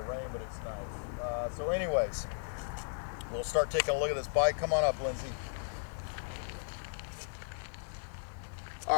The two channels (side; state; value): right; silent; digital silence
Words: rain, but it's nice. So anyways, we'll start taking a look at this bike. Come on up, Lindsay.